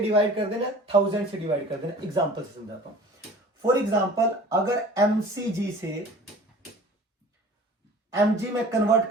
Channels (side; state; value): both; normal; correlation 0.45